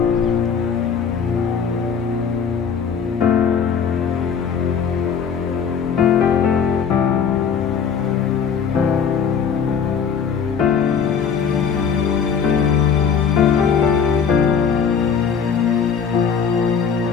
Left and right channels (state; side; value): quieter; right; 6.7 dB